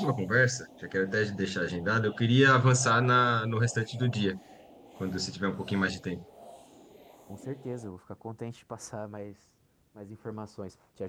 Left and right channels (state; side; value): identical; both; correlation 1.00